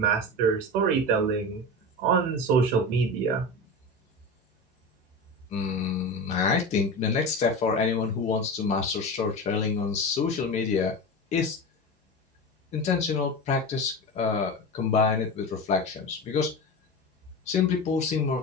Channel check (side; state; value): both; normal; correlation 0.26